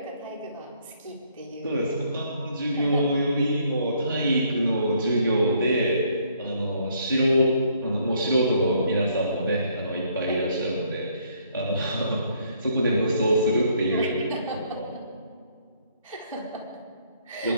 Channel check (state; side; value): inverted; both; correlation -0.67